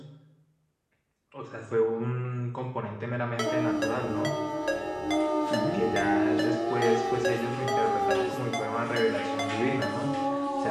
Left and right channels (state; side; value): identical; both; correlation 1.00